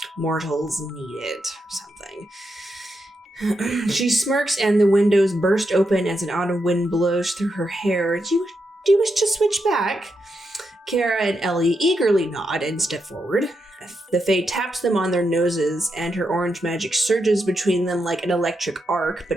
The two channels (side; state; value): both; normal; correlation 0.84